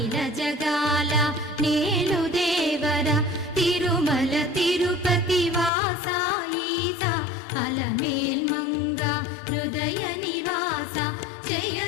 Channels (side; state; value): right; drops out; at 5.7 s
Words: జగాల నేలు దేవర తిరుమల తిరుపతి వాస ఈసా అలమేల్ మంగ హృదయ నివాస జయ